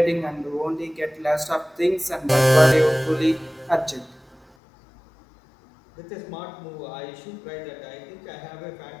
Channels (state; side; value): drops out; right; at 4.5 s